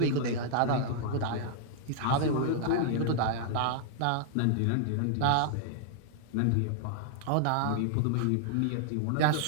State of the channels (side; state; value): both; different; correlation -0.01